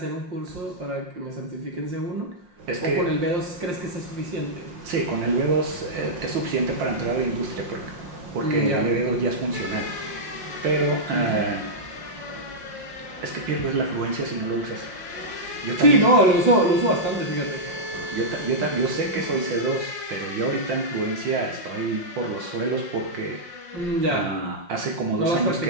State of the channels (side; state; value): left; late; 5.6 ms